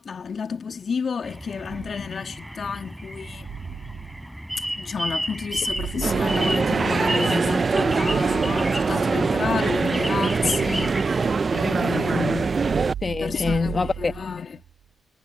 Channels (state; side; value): normal; both; correlation 0.89